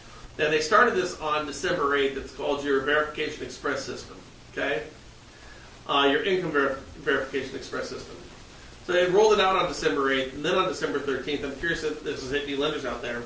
And they started this on December 8th. It's called your Verification Express System, okay? Your Income Verification Express System. So they rolled it out on December 8th, and then on December 13th, I'm curious if this is hitting any lenders out there.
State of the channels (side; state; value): both; identical; correlation 1.00